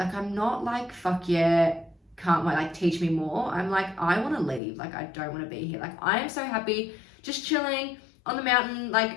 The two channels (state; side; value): drops out; right; at 4.6 s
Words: I'm not like, fuck yeah, can't wait, like, teach me more. I'm like, I want to leave. Like, I don't want to be here. Like, I am so happy just chilling on the mountain,